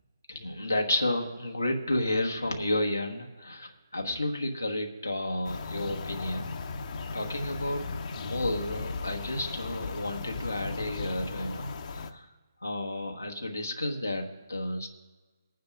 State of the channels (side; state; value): both; inverted; correlation -0.84